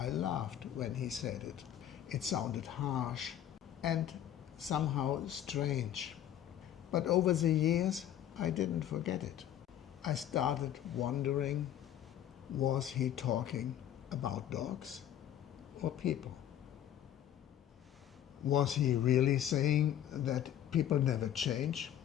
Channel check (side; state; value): right; quieter; 11.0 dB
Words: laughed when he said it. It sounded harsh and somehow strange. But over the years I didn't forget it. I started wondering, was he talking about dogs or people? Was he really saying that people never change?